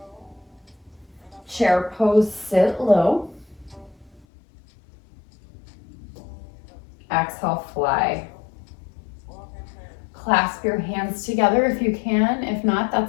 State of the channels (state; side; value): drops out; right; at 4.2 s